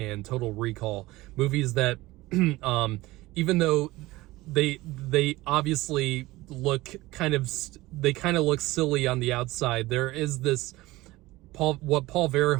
Total Recall, movies that even though they obviously look kind of look silly on the outside, there is this what Paul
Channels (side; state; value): left; quieter; 19.1 dB